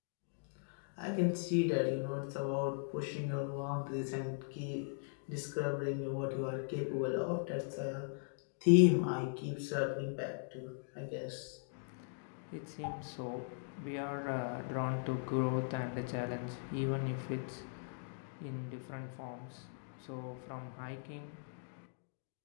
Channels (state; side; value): silent; right; digital silence